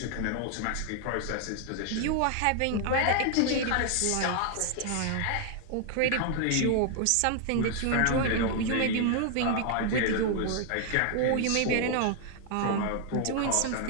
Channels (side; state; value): both; different; correlation 0.00